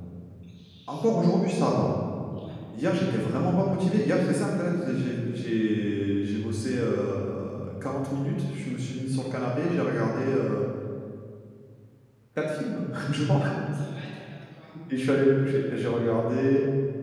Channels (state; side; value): identical; both; correlation 1.00